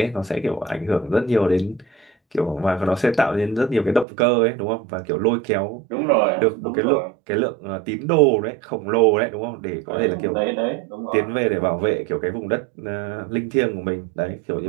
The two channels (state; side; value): drops out; left; at 4.0 s